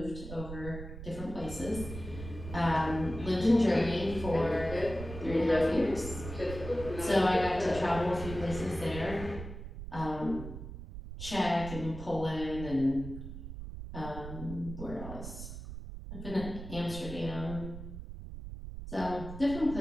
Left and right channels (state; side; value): noise; right; rumble, 10 dB below the sound